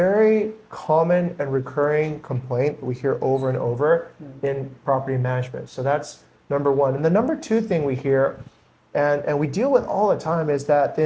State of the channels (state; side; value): identical; both; correlation 1.00